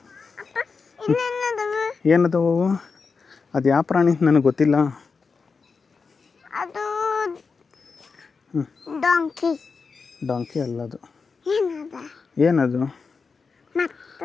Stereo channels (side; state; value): right; quieter; 4.9 dB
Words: ಇನ್ನೇನದವ ಏನದವು ಅದು ಯಾವ ಪ್ರಾಣಿ ನನಗೆ ಗೊತ್ತಿಲ್ಲ ಅದು ಡಾಂಕಿ ಡಾಂಕಿ ಅಲ್ಲ ಅದು ಏನದ ಏನದು